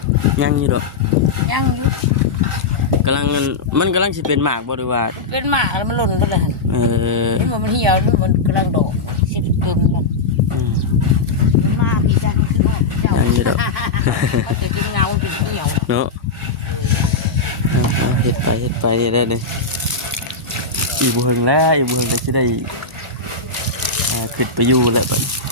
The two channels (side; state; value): right; quieter; 3.9 dB